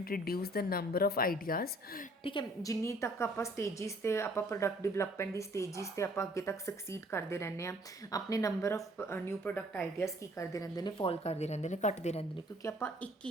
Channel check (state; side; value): normal; both; correlation 0.59